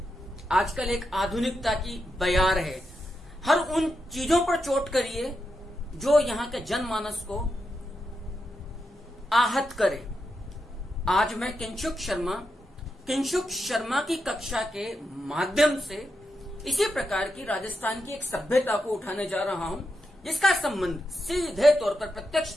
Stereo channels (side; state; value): both; normal; correlation 0.86